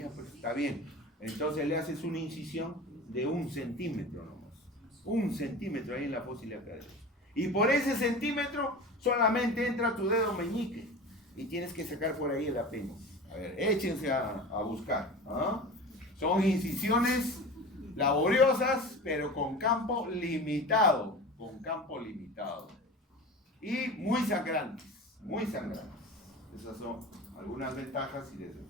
pues está bien. Entonces le haces una incisión de 1 centímetro nomás. 1 centímetro ahí en la fosa ilíaca derecha. Y por ese centímetro solamente entra tu dedo meñique. y tienes que sacar por ahí el apéndice. A ver, échense a buscar. ¿Ah? Son incisiones laboriosas, pero con campo limitado. Con campo limitado. Y muy sangrantes. Muy sangrantes. Esas son algunas ventajas y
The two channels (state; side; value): normal; both; correlation 0.33